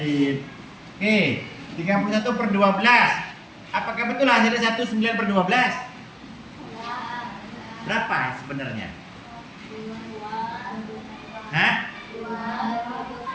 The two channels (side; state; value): both; identical; correlation 1.00